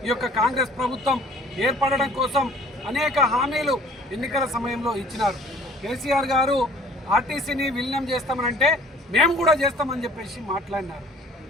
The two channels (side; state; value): both; normal; correlation 0.51